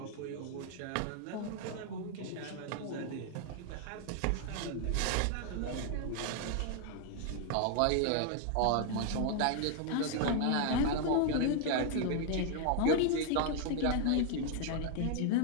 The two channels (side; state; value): both; different; correlation 0.00